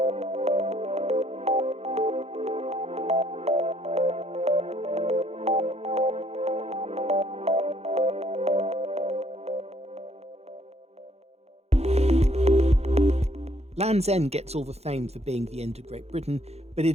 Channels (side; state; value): left; late; 0.31 ms